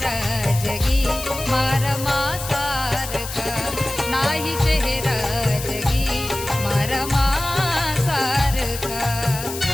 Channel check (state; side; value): noise; left; hiss, 9 dB below the sound